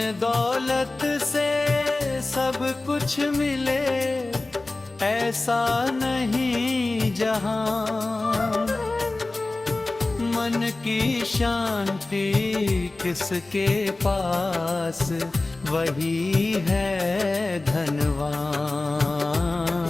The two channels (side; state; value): right; quieter; 3.1 dB